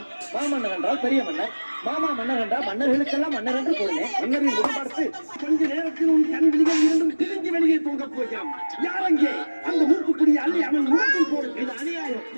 மாமன்னன் என்றால் பெரிய மன்னர், மாமா மன்னர் என்றால் மன்னர்களுக்கெல்லாம் மன்னர் என்று கூறினேன். மன்னரின் முடி பார்த்து கொஞ்ச நேரத்தில் உன் கண் விழிகள் இரண்டும் திரிஞ்சு வெளியே தூங்க போகிறான். யார் அங்கே? அந்த மூக்குக்குடி அள்ளி அவன் முகத்தில் போடு. இது அநியாயம்,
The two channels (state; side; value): inverted; both; correlation -1.00